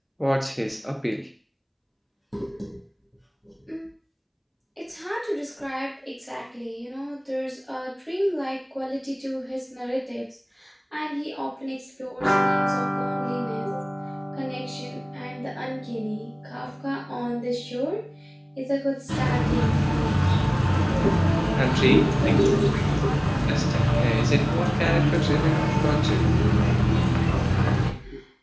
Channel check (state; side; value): identical; both; correlation 1.00